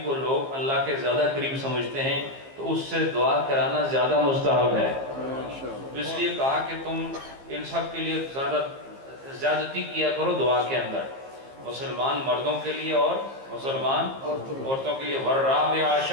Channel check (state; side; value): late; left; 15 ms